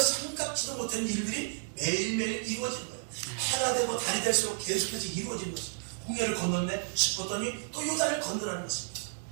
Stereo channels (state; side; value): silent; left; digital silence